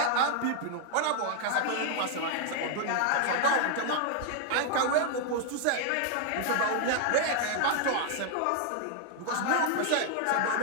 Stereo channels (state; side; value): different; both; correlation 0.00